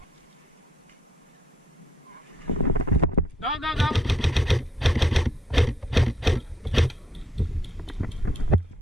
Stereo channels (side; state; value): both; normal; correlation 0.70